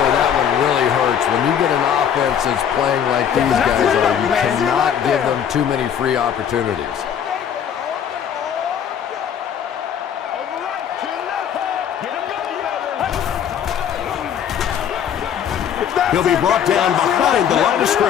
that one really hurts. When you get an offense that's playing like these guys are, you cannot give them too many free opportunities. He'll be brought down behind the line of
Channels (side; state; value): right; quieter; 8.7 dB